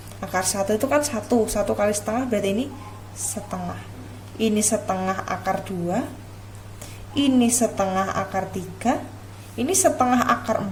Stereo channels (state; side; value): identical; both; correlation 1.00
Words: Akar 1 itu kan 1 kali setengah berarti ini setengah. Ini setengah akar 2. Ini setengah akar 3. Ini setengah akar